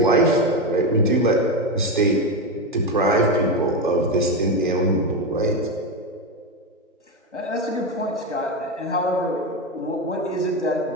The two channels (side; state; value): both; normal; correlation 0.13